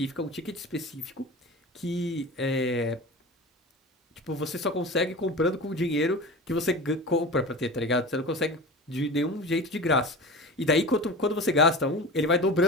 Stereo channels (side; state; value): both; normal; correlation 0.32